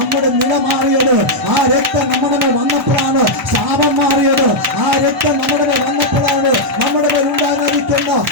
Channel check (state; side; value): normal; both; correlation -0.04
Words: നില മാറിയത്. ആ രക്തം നമ്മുടെ മേൽ വന്നപ്പോഴാണ് ശാപം മാറിയത്. ആ രക്തം നമ്മുടെ മേൽ വന്നപ്പോഴാണ് നമ്മുടെ മേൽ ഉണ്ടാകാതിരിക്കുന്ന